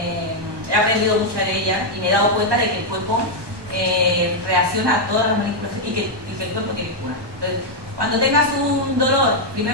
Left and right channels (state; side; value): late; left; 1.2 ms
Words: aprendido mucho de ella y me he dado cuenta de que el cuerpo reacciona a todas las manipulaciones y que el cuerpo tiene cura. Entonces, cuando tengas un dolor,